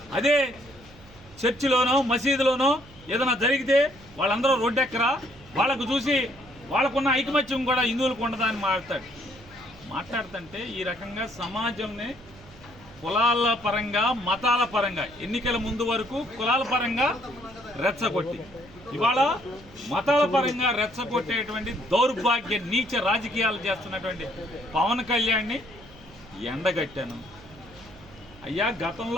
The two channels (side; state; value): right; noise; hum, 22 dB below the sound